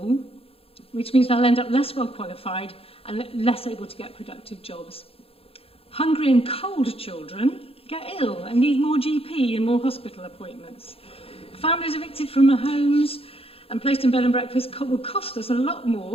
which means they'll end up less well qualified and less able to get productive jobs. Hungry and cold children get ill and need more GP and more hospital appointments. Families evicted from their homes and placed in bed and breakfast will cost us a lot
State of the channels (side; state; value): right; late; 0.27 ms